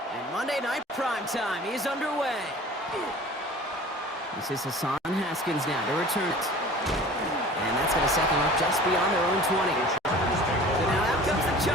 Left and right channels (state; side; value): normal; both; correlation 0.43